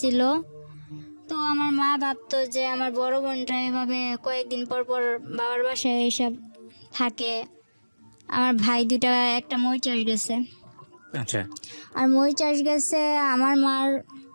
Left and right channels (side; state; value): both; inverted; correlation -1.00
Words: ছিল। তো আমার মা ভাবতো যে আমার বড় বোনটা এভাবে কয়েকদিন পর পর বাবার বাসায় এইসব থাকে। আমার ভাই 2টা, একটা মই চাষ গেছে। আচ্ছা। আর মই চাষ গেছে আমার